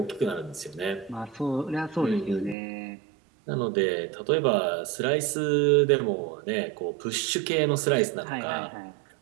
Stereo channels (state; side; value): drops out; left; at 2.6 s